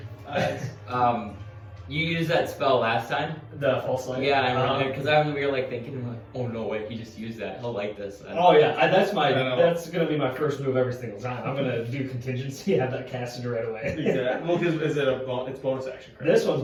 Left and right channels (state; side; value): identical; both; correlation 1.00